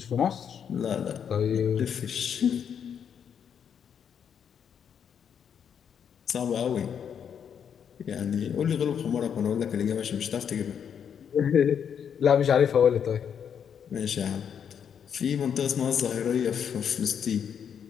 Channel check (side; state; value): right; quieter; 7.9 dB